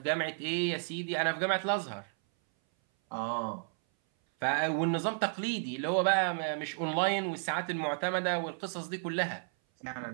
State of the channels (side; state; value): left; silent; 56 dB below the other